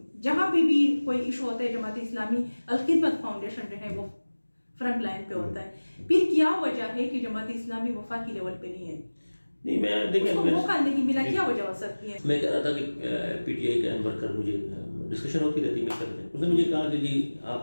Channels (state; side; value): inverted; both; correlation -1.00